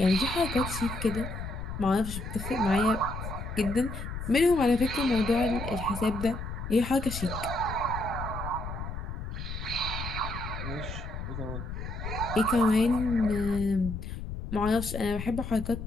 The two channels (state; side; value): noise; left; rumble, 7 dB below the sound